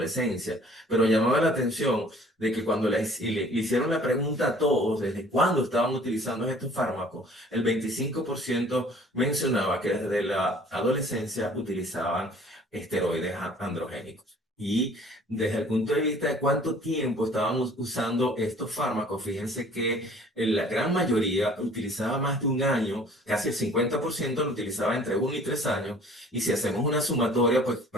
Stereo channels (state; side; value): normal; both; correlation 0.52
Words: pero llamaba la atención de que cuando le hicieron la pregunta a todos desde cuándo estaban utilizando estos fármacos, el 25% mencionaba que desde la adolescencia utilizaban esteroides androgénicos. Y desde el punto de vista de cuánto tiempo estaban usando estos fármacos, fíjense que la gran mayoría utilizaba más de un año, casi el 50% lo utilizaba entre 1 y 3 años, y si hacemos una sumatoria, pues